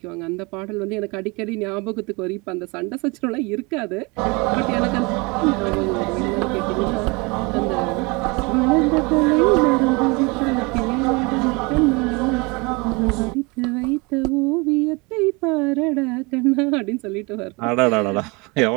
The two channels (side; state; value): left; quieter; 27.4 dB